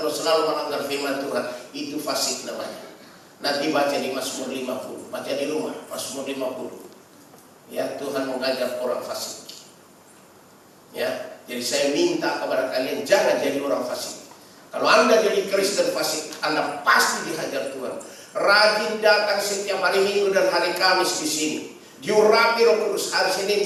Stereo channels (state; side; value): identical; both; correlation 1.00